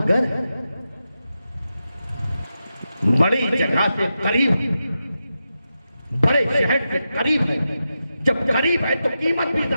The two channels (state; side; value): inverted; both; correlation -0.90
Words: है, बड़ी जगह से करीब, बड़े शहर से करीब है। जब करीब है तो कीमत भी